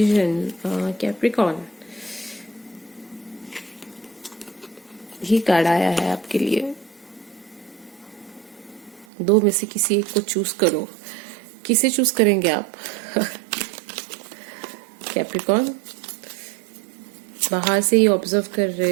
कैप्रिकॉन, ये कार्ड आया है आपके लिए। दो में से किसी एक को चूज करो। किसे चूज करेंगे आप? कैप्रिकॉन बाहर से ही ऑब्जर्व कर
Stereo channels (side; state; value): left; drops out; at 9.1 s